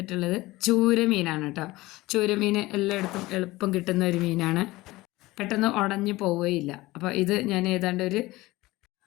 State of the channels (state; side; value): quieter; right; 19.4 dB